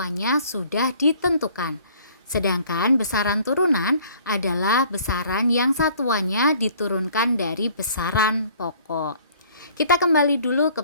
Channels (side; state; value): both; inverted; correlation -0.56